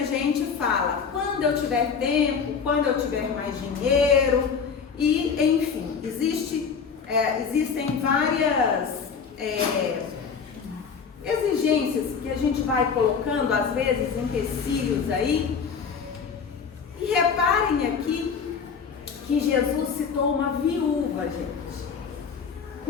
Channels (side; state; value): right; quieter; 6.1 dB